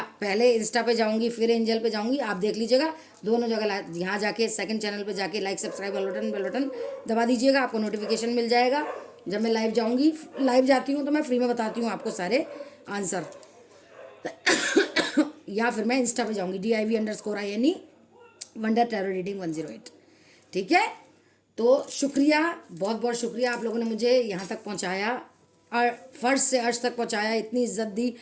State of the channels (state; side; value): identical; both; correlation 1.00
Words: पहले इंस्टा पे जाऊँगी फिर एंजल पे जाऊँगी, आप देख लीजिएगा दोनों जगह। यहाँ जाके सेकंड चैनल पे जाके लाइक सब्सक्राइब बेल बटन दबा दीजिएगा, आपको नोटिफिकेशन मिल जाएगा जब मैं लाइव जाऊँगी। लाइव जाती हूँ तो मैं फ्री में बताती हूँ आपको सारे आंसर, या फिर मैं इंस्टा पे जाऊँगी DIV_INE वंडर टैरो रीडिंग 108, ठीक है? तो शुक्रिया, बहुत बहुत शुक्रिया, आप लोगों ने मुझे यहाँ तक पहुँचाया और फर्श से अर्श तक पहुँचाया, इतनी इज्जत दी,